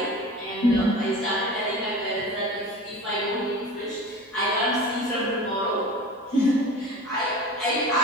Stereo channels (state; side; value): normal; both; correlation 0.35